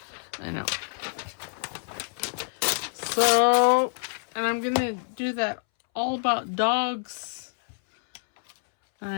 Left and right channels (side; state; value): right; silent; 60 dB below the other